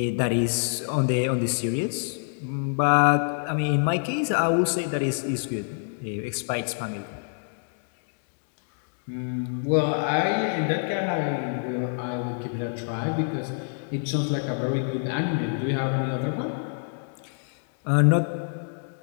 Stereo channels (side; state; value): right; silent; digital silence